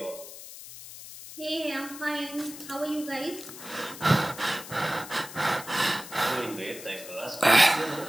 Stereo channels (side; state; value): left; noise; hiss, 13 dB below the sound